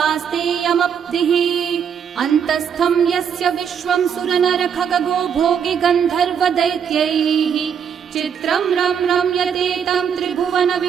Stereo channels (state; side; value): quieter; left; 7.7 dB